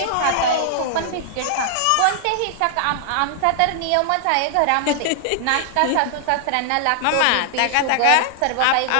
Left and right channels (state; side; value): different; both; correlation -0.01